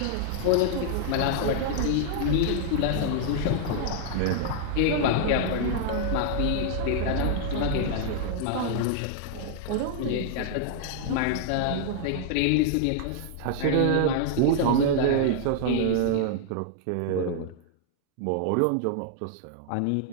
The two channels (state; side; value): different; both; correlation 0.00